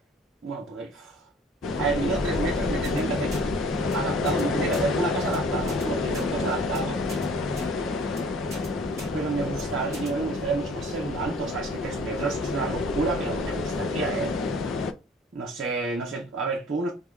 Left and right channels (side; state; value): both; normal; correlation 0.50